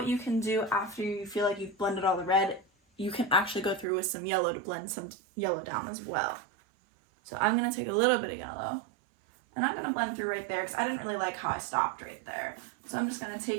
you can do after you feel like you've blended all the red, you can actually go through with some yellow to blend some yellow down as well. So I'm going to take a little bit of yellow, and I'm going to blend through right there because I didn't really like how I stopped right there. So I'm just going to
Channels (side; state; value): left; drops out; at 3.9 s